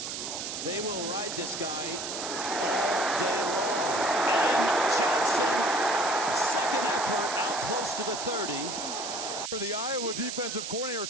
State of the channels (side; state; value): right; noise; hiss, 5 dB below the sound